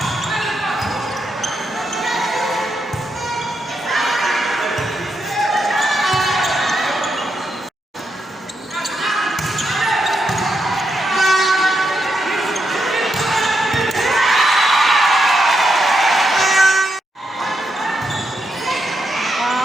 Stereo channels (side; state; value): both; normal; correlation 0.83